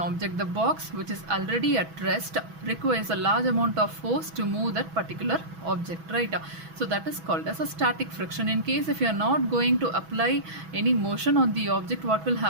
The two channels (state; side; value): late; left; 6.1 ms